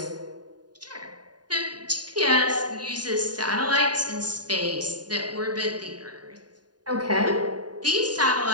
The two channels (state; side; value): late; left; 0.70 ms